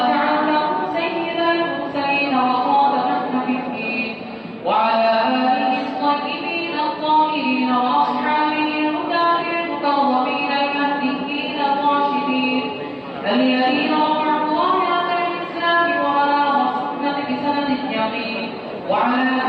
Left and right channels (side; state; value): both; identical; correlation 1.00